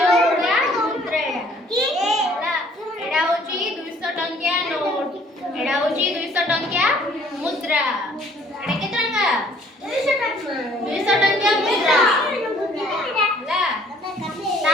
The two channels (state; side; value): normal; both; correlation 0.58